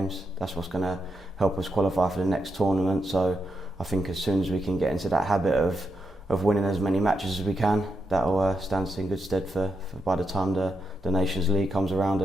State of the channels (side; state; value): both; normal; correlation 0.84